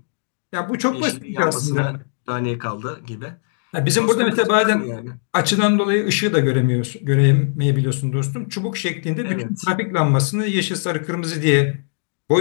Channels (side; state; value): right; silent; digital silence